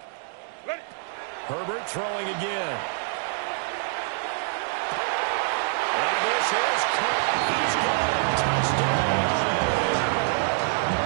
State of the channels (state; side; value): silent; left; 61 dB below the other